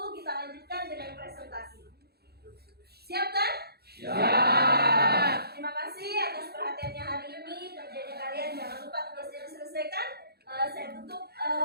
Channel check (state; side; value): late; left; 0.46 ms